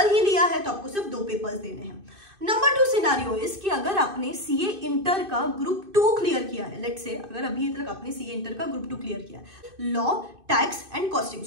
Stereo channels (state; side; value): late; left; 2.5 ms